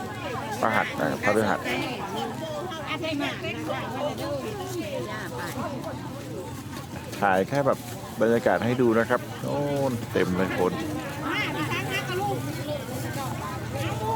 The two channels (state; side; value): identical; both; correlation 1.00